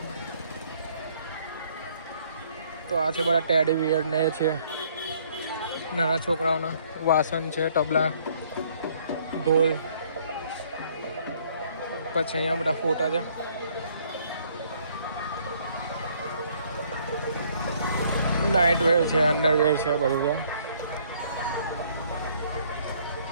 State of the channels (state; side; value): inverted; both; correlation -0.63